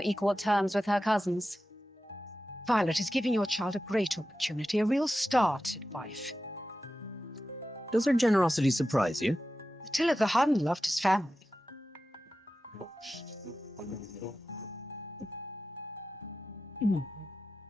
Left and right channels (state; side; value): normal; both; correlation 0.93